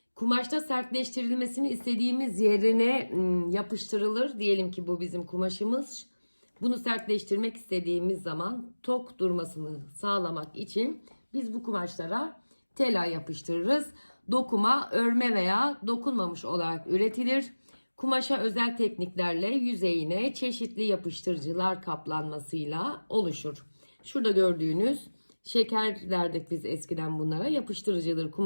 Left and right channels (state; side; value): inverted; both; correlation -1.00